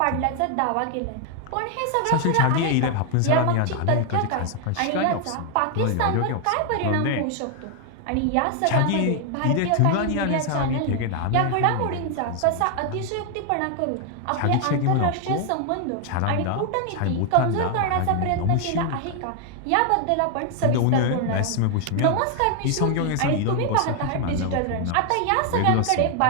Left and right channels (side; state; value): both; different; correlation 0.00